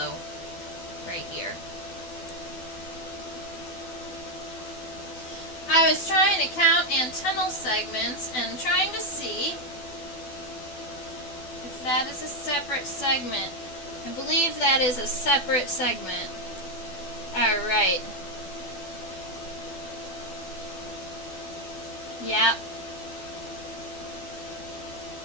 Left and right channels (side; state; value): right; late; 12 ms